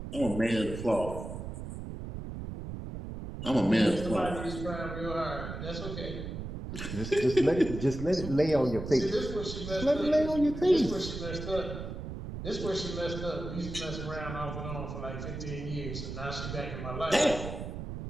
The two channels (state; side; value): noise; right; rumble, 7 dB below the sound